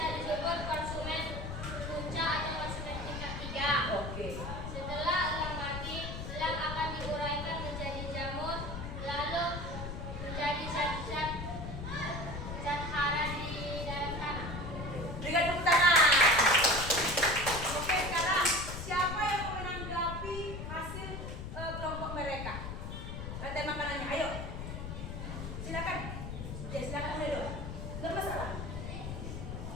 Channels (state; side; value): noise; left; rumble, 6 dB below the sound